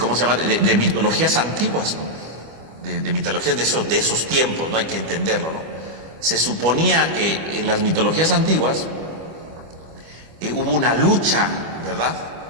mitologías antiguas, ¿no? de mitologías de esos tiempos, no hay que entenderlo, ¿no? Se suponía que en las mitologías antiguas hubo una lucha, ¿verdad?,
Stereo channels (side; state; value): left; late; 25 ms